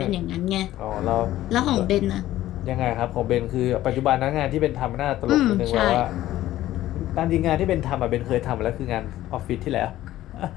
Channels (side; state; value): right; quieter; 14.4 dB